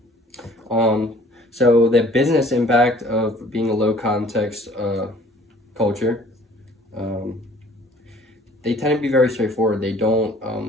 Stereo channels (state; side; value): normal; both; correlation 0.53